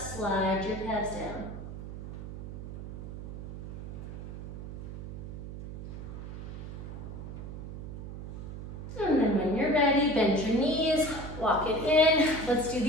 your calves down. And then when you're ready, bend your knees, walk it in. Let's do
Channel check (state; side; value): noise; right; hum, 9 dB below the sound